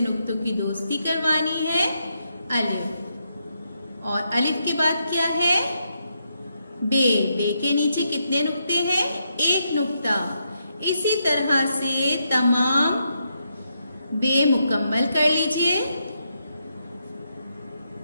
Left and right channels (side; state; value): both; inverted; correlation -0.81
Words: नुक्तों की दोस्ती करवानी है। अलिफ और अलिफ के बाद क्या है, बे। बे के नीचे कितने नुक्ते हैं, एक नुक्ता। इसी तरह से तमाम बे मुकम्मल कर लीजिए।